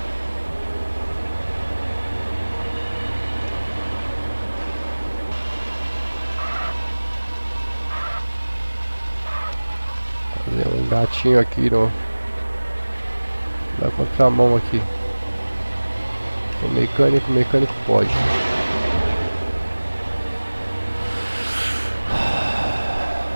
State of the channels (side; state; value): both; inverted; correlation -1.00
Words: Fazer um gatinho aqui no, na contramão aqui. O mecânico pode.